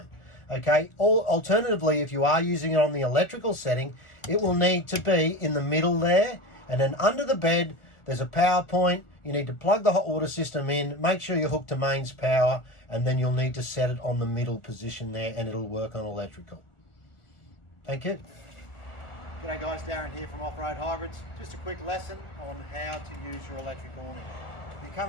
Okay, alternatively, if you are using it on the electrical setting, it will need to be in the middle there, and then under the bed, there's a power point. You need to plug the hot water system in, make sure you're hooked to mains power, and then you'll need to set it on the middle position there and it'll work on electrical. Thank you. G'day guys, Darren here from Offroad Hybrids. Just a quick lesson on how to use your electric awning. You come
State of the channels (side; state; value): right; late; 1.4 ms